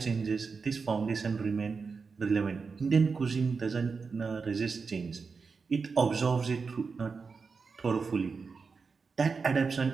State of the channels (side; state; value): left; quieter; 4.9 dB